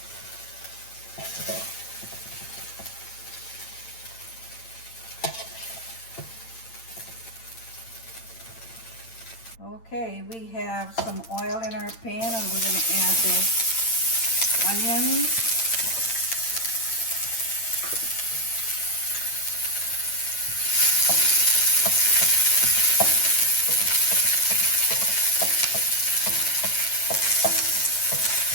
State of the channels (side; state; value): right; late; 8.9 ms